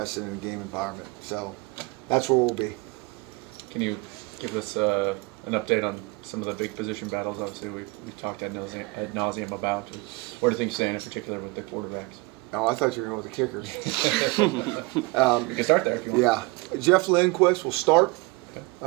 in a game environment. So that's where we'll be. Can you give us an update on some of the big position battles? Obviously, we've talked ad nauseum about. Where do things stand in particular with the quarterbacks? Oh, I thought you were going with the kickers. You can start there if you want. Yeah. Jeff Lindquist will start.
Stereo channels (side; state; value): left; quieter; 25.1 dB